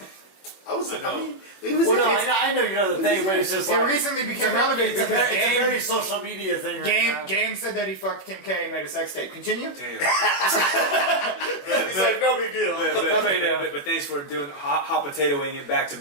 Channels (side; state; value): right; late; 21 ms